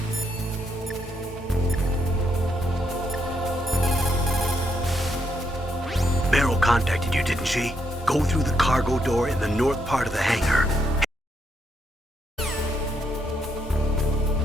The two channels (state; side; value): normal; both; correlation 0.77